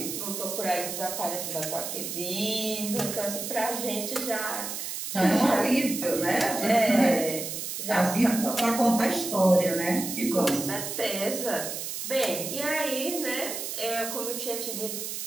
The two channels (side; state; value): right; noise; hiss, 5 dB below the sound